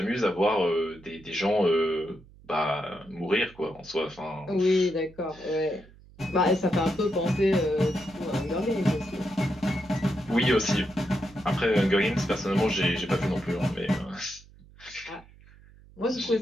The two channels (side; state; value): right; noise; hum, 24 dB below the sound